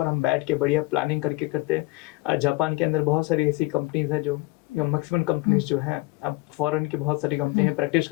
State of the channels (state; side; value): quieter; right; 21.8 dB